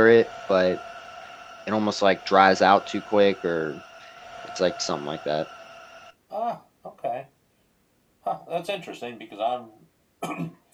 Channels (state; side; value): identical; both; correlation 1.00